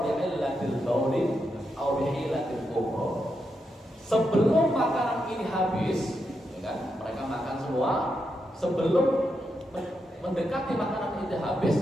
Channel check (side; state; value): both; normal; correlation 0.84